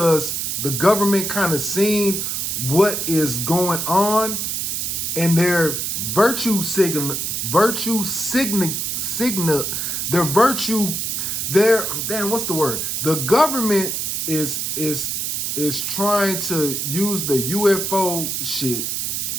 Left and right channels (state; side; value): noise; right; hiss, 1 dB below the sound